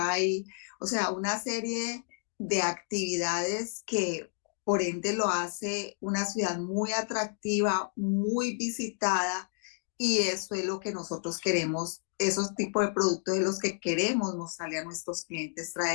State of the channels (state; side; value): silent; right; digital silence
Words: o sea, una serie de actividades que por ende lo hace una ciudad muy atractiva, muy visitada, y eso es lo que nosotros queremos, esos tipos de productos de los que queremos mostrarle a nuestros clientes,